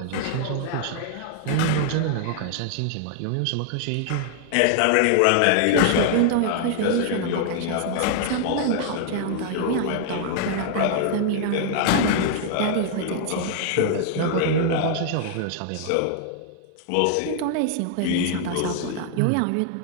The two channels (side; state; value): both; different; correlation 0.00